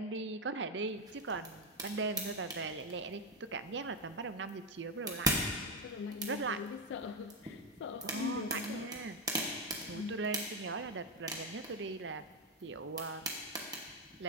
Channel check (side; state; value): both; normal; correlation 0.07